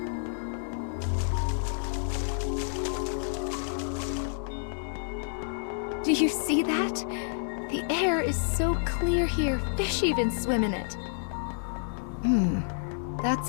Do you see that? The air is so clear here, fish even swim in it. That's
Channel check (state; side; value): silent; right; digital silence